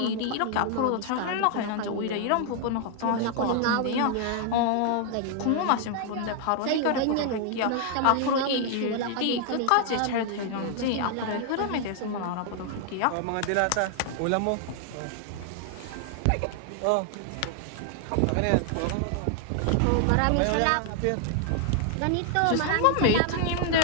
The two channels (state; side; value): different; both; correlation 0.00